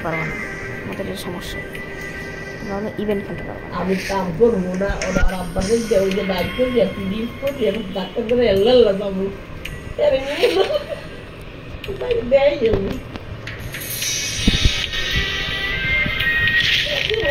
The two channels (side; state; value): both; identical; correlation 1.00